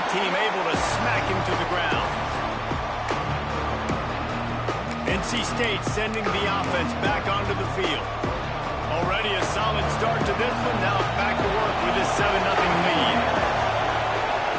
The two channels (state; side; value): identical; both; correlation 1.00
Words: team able to smack him to the ground. NC State sending the offense back onto the field. Already a solid start to this one. Now back to work with this 7-0 lead.